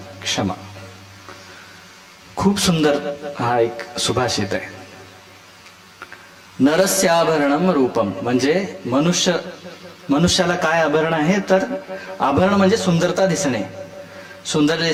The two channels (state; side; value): identical; both; correlation 1.00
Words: क्षमा। खूप सुंदर हा एक सुभाषित आहे। नरस्य आभरणम रूपम म्हणजे मनुष्याला काय आभरण आहे, तर आभरण म्हणजे सुंदरता दिसणे, सुंदर